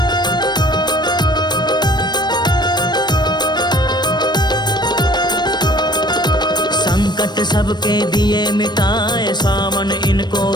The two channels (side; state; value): right; late; 0.21 ms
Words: संकट सबके दिए मिटाए। सावन इनको